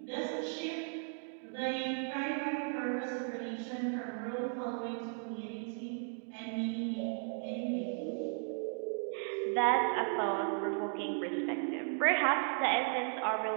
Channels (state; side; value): silent; left; 54 dB below the other